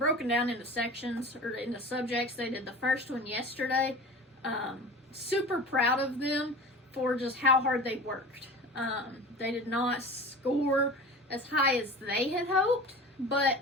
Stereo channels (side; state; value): both; normal; correlation 0.35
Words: down into sections, or into subjects. They did the first one yesterday. Super proud of them for just how hard they worked. They did not score as high as they had hoped, but